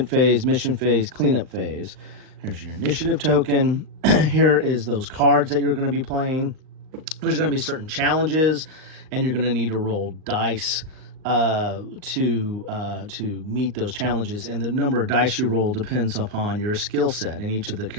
phase, mission phase, cleanup phase. Here's your initiative token. Here is those cards that you're going to be playing. There's going to be certain challenges, and you're going to need to roll dice to meet those challenges, and the number of dice you roll depends upon your skill set, and each of the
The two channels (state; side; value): late; left; 38 ms